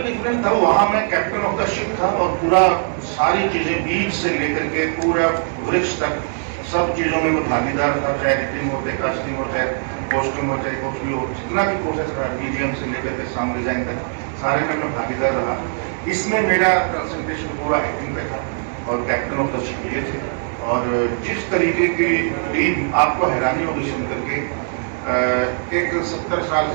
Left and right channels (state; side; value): silent; left; digital silence